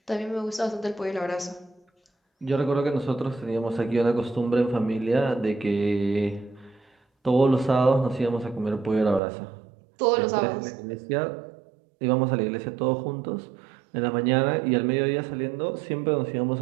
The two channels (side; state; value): left; drops out; at 9.2 s